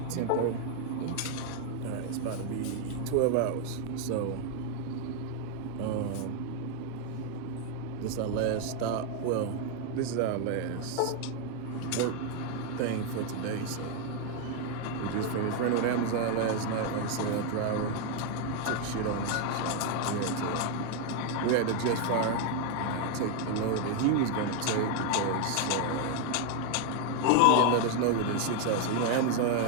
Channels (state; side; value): different; both; correlation 0.01